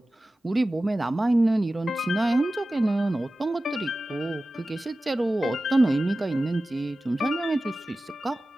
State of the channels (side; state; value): both; normal; correlation 0.95